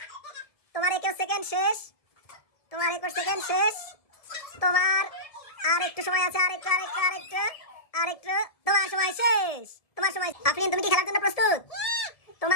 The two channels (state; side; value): late; right; 1.7 ms